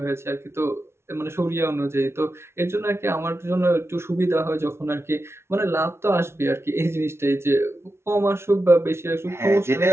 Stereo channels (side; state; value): left; late; 0.12 ms